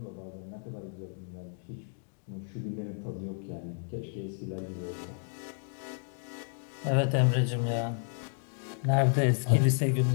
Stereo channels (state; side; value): silent; right; 57 dB below the other